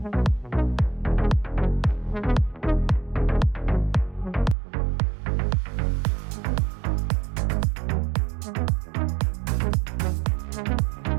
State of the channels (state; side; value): drops out; left; at 4.5 s